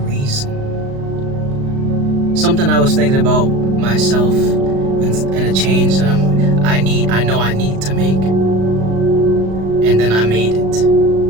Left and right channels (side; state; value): left; late; 36 ms